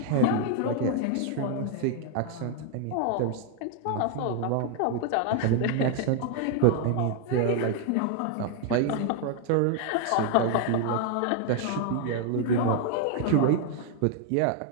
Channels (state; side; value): different; both; correlation 0.00